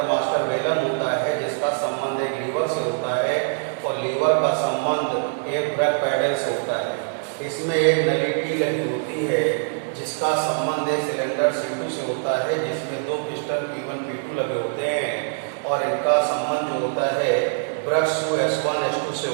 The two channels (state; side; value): silent; left; digital silence